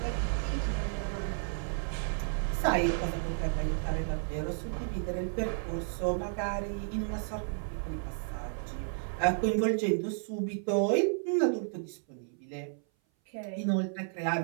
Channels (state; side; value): silent; left; 56 dB below the other